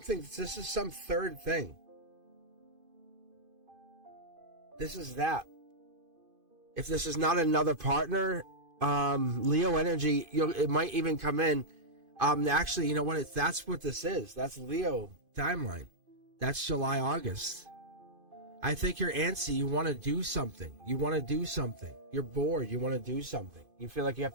thing. This is that. If this is not another partner, Leo energy, it might even come in. Actually, you know what? That's what this is. That's Leo timeline. That's July, August. I think you're antsy. You want to do something. You're bored. You want to do something. You feel like you have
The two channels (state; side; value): late; left; 2.5 ms